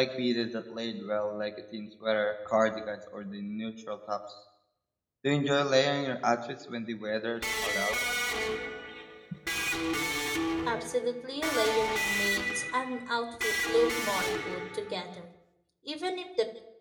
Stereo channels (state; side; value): identical; both; correlation 1.00